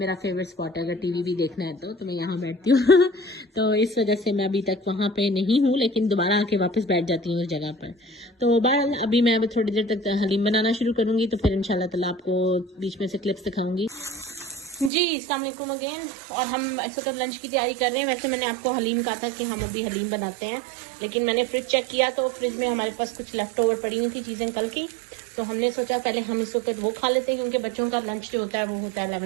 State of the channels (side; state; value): left; drops out; at 14.9 s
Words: फेवरेट स्पॉट है। अगर टीवी भी देखना है तो मैं यहाँ बैठती हूँ। तो इस वजह से मैं अभी तक वहाँ पे नहीं हूँ, लेकिन दोबारा आके वापस बैठ जाती हूँ उस जगह पर। तो बहरहाल अभी मैं थोड़ी देर तक हलीम बनाना शुरू करूँगी, तो फिर इंशाल्लाह ताला आपको बीच में से क्लिप्स दिखाऊंगी जी। अस्सलाम वालेकुम अगेन। और हम ऐसे तो लंच की तैयारी कर रहे हैं। वैसे मैंने आपको हलीम कहा था कि हम अभी हलीम बनाते हैं, लेकिन मैंने फ्रिज चेक किया तो फ्रिज में हमारे पास कुछ लेफ्ट ओवर पड़ी हुई थी चीज़ें कल की, तो हमने सोचा पहले हम इस वक्त वो खा लेते हैं, क्योंकि बच्चों का लंच जो होता है वो होता है